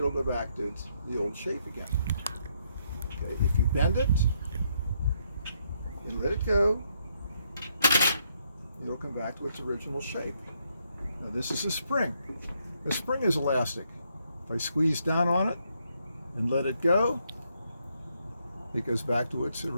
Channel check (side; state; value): both; inverted; correlation -0.75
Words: go back to the old shape again. Okay, if you bend it and let it go, it'll come back to its original shape. Now this is a spring. The spring is elastic. If I squeeze down on it and let it go, it goes back to its